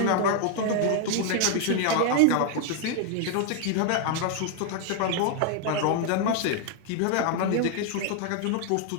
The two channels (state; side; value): different; both; correlation 0.00